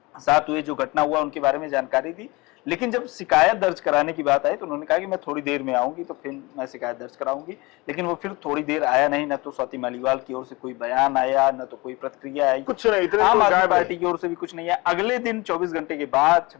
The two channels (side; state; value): right; quieter; 23.8 dB